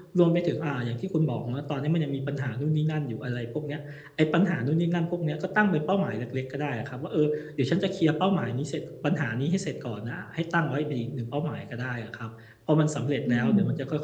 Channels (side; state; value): both; identical; correlation 1.00